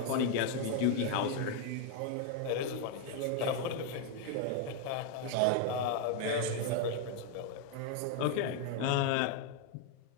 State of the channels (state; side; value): different; both; correlation 0.01